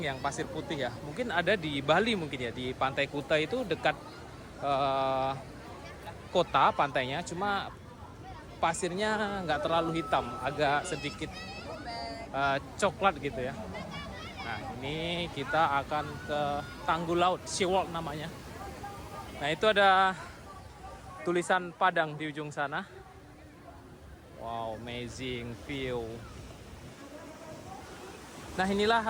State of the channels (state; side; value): identical; both; correlation 1.00